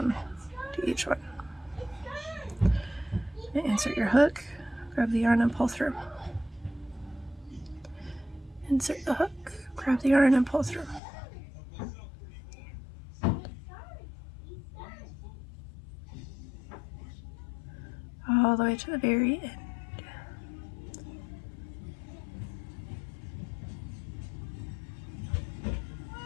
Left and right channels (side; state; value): right; drops out; at 11.0 s